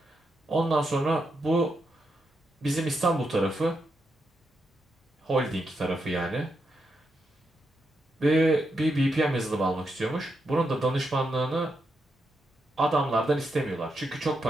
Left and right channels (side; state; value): both; normal; correlation 0.84